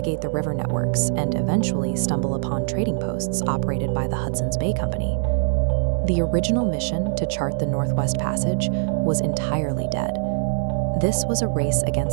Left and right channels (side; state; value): left; silent; digital silence